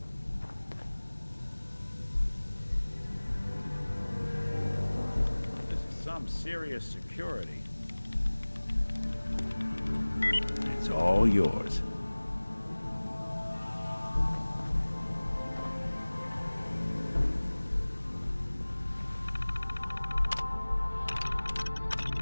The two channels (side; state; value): both; inverted; correlation -1.00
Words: This is some serious security. It's all yours.